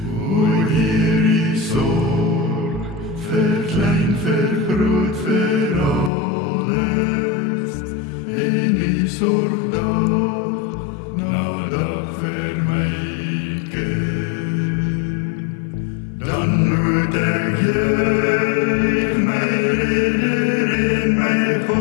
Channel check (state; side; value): drops out; right; at 6.1 s